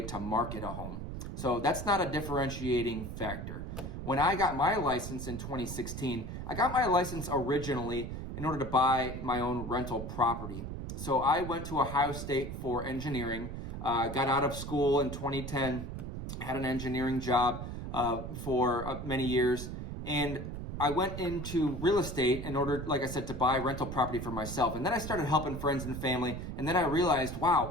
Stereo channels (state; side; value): noise; right; rumble, 7 dB below the sound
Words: to market a home. So that's not a differentiating factor. When I got my license in 2016, I got my license originally in order to buy my own rental property. So I went to Ohio State for engineering, got out of school in 2010, had an engineering job for many years, and I went into real estate in order, like I said, to buy rental property for myself. And then I started helping friends and family, and then I realized,